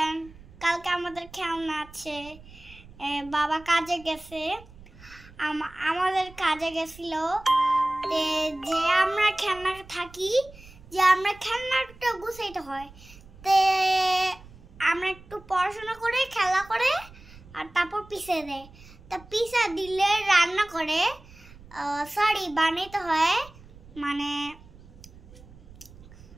কালকে আমাদের খেলনা আছে। বাবা কাজে গেছে, আমাদের কাজে গেছিল, যে আমরা খেলনা থাকি, যে আমরা খেলনাটা গুছাইতে হয়, তে আমরা একটু পড়াশোনা করে খেলা করে আর তারপর পিষে দেয়। তা পিষা দিলে রান্না করে সরি বানাইতে হয়, মানে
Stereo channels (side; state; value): right; noise; rumble, 21 dB below the sound